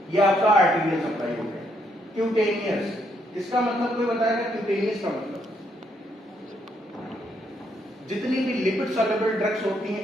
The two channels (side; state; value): both; normal; correlation 0.73